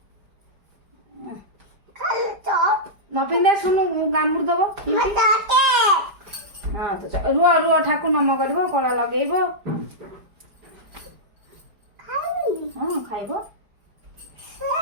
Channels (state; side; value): late; left; 5.0 ms